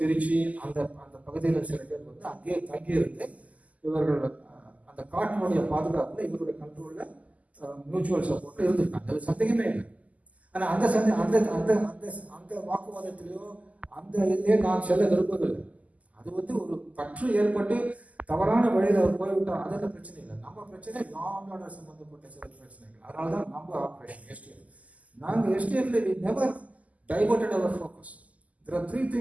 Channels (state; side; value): late; left; 0.073 ms